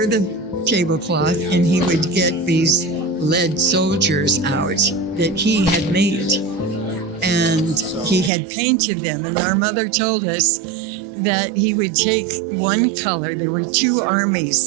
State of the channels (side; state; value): left; drops out; at 8.3 s